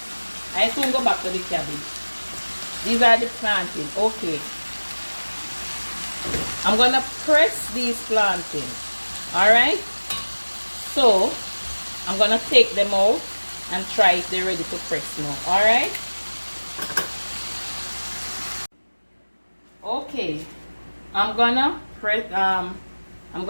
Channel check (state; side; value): inverted; both; correlation -1.00